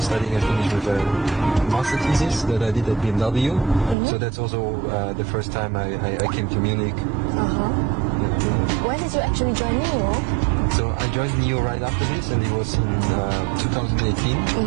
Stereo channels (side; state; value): left; drops out; at 4.0 s